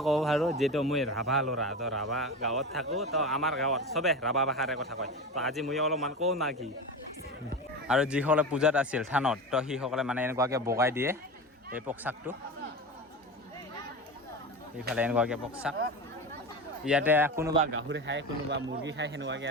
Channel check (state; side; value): normal; both; correlation 0.25